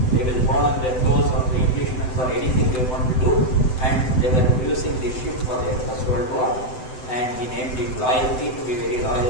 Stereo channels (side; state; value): right; late; 7.9 ms